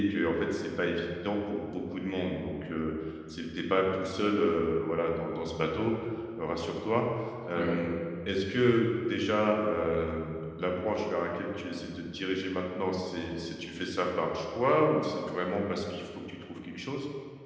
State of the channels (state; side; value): identical; both; correlation 1.00